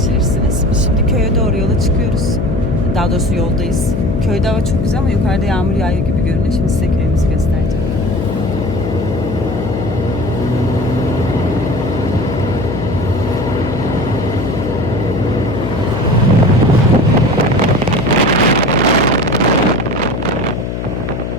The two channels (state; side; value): noise; left; hum, 4 dB below the sound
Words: Biz şimdi köye doğru yola çıkıyoruz. Daha doğrusu yoldayız. Köyde hava çok güzel ama yukarıda yağmur yağıyor gibi görünüyor. Şimdi size köyümüzü göstereceğim.